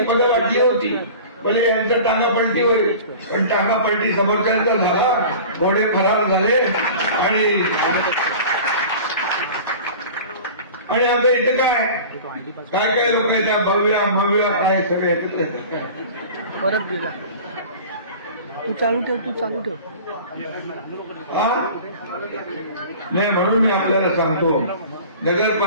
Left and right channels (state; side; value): inverted; both; correlation -0.39